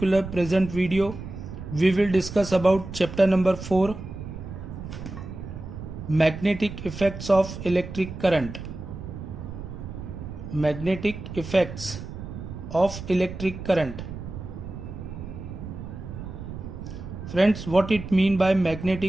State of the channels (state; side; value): noise; right; rumble, 10 dB below the sound